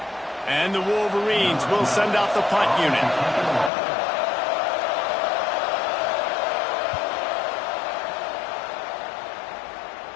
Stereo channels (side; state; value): right; drops out; at 3.7 s